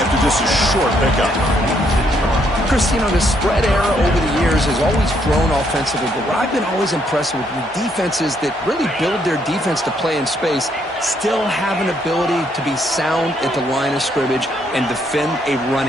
just a short pickup. Chris, you know, the spread era over the years has always grown offensively, but what I've been always impressed with the defenses that really build their defense to play in space still have an ability to be sound at the line of scrimmage and defend a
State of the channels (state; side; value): normal; both; correlation 0.72